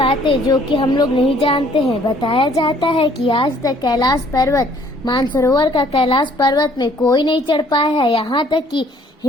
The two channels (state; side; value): normal; both; correlation 0.60